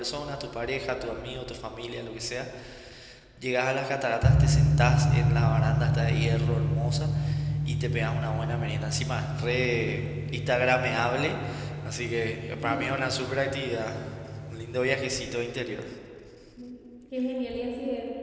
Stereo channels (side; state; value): both; identical; correlation 1.00